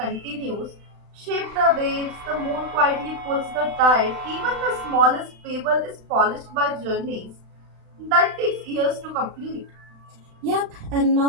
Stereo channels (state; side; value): late; left; 36 ms